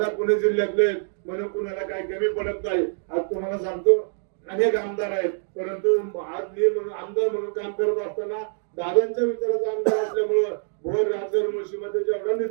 पुणे जिल्ह्यातले आहेत म्हणून कुणाला काही कमी पडत नाही. आज तुम्हाला सांगतो अनेक आमदार आहेत परंतु आज मी आमदार म्हणून काम करत असताना दादांच्या विचाराचा आमदार असल्यामुळं भोर राजगड मुळशीमध्ये जेवढा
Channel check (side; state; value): left; silent; digital silence